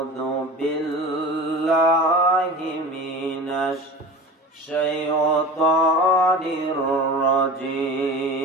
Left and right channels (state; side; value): normal; both; correlation 0.34